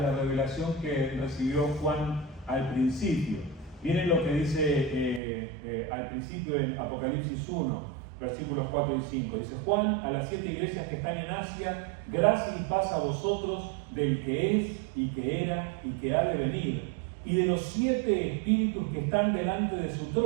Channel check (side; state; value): left; drops out; at 5.2 s